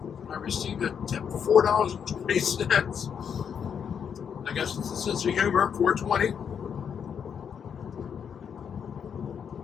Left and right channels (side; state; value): right; quieter; 7.5 dB